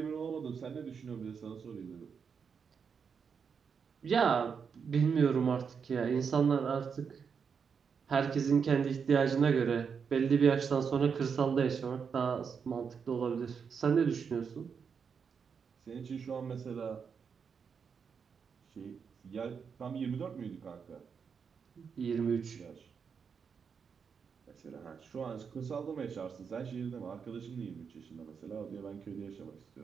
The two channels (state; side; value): quieter; left; 6.3 dB